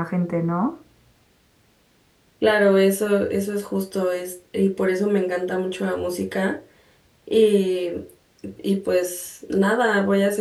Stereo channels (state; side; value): identical; both; correlation 1.00